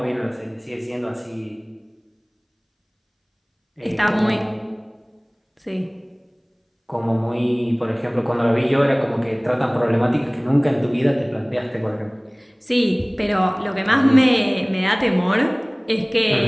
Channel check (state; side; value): identical; both; correlation 1.00